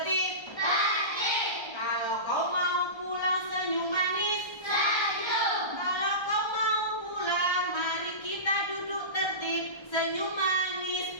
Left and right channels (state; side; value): late; right; 1.3 ms